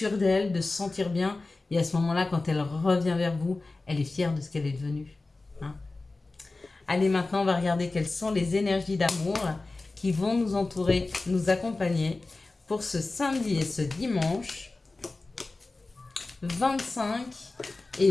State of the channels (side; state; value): right; quieter; 3.3 dB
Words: d'elle, de se sentir bien. Et à ce moment-là, quand elle revient vers vous, elle est fière de ce qu'elle est devenue. Hein. Allez, maintenant, on va regarder quelles sont les énergies d'amour qui vont nous entourer, nous accompagner pour ce samedi et ce dimanche 25